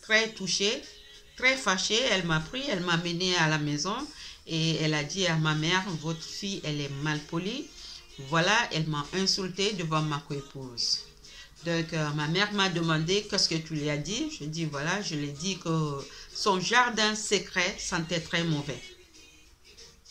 très touchée, très fâchée. Elle m'a pris, elle m'a mené à la maison. Et elle a dit à ma mère, votre fille, elle est mal polie. Voilà, elle m'a insultée devant ma coépouse. Donc, ma mère m'a demandé qu'est-ce que tu lui as dit. Je dis, voilà, je lui ai dit que son jardin secret sentait très mauvais.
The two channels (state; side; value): identical; both; correlation 1.00